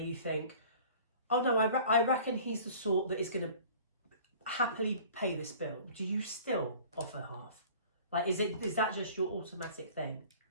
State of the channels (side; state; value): both; inverted; correlation -0.46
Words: you think, oh no, I reckon he's the sort that is going to happily pay this bill. Do you still offer half? Like, is that just your automatic thing?